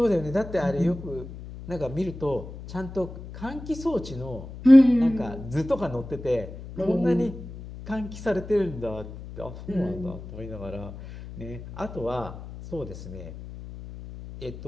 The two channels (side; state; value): left; noise; hum, 12 dB below the sound